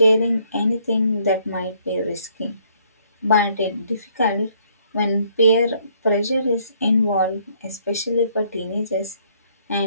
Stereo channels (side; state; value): both; inverted; correlation -0.66